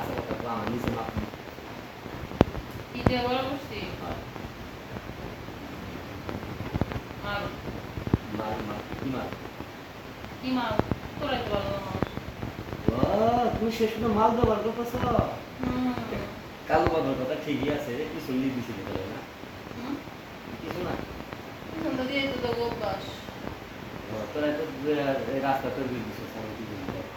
কথা তো আমার নিচে মাপনি কি দিয়ে বড় করছি মাল মাল মাল কি মাল কি মাল তোরাই তো ভালো মাল তুমি শেষ পর্যন্ত মাল ব্যবহার করতেছ কালো বাঁধার কথা ঠিকই আছে কিছু নিয়ে দিছিল তাহলে না কিছু না পিছন তো দিয়ে তো অভ্যাস তোরা তো রাস্তা তৈরি করে দিচ্ছ আমি কি করবো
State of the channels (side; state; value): both; identical; correlation 1.00